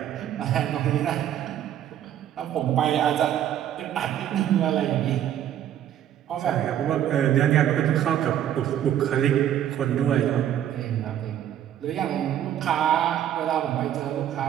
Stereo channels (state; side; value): quieter; left; 10.8 dB